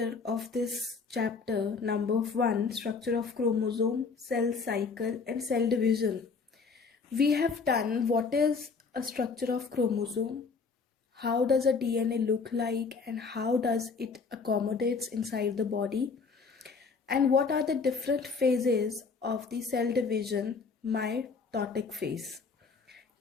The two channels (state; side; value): quieter; right; 4.9 dB